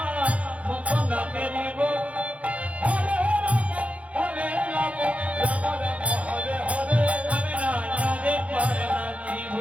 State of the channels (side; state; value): left; late; 0.065 ms